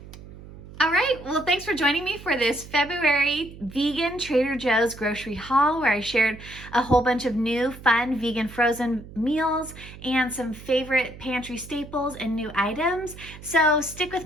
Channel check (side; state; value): right; noise; hum, 16 dB below the sound